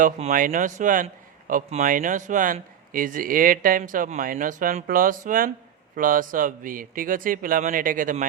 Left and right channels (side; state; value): left; quieter; 9.3 dB